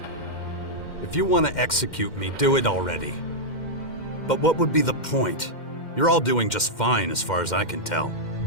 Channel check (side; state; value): right; late; 2.1 ms